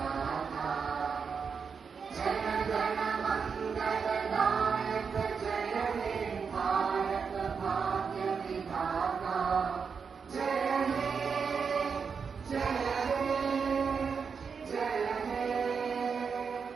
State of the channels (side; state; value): left; quieter; 5.9 dB